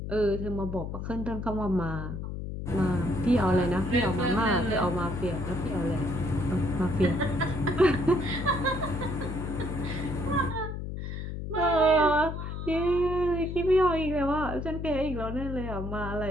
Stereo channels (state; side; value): noise; left; hum, 6 dB below the sound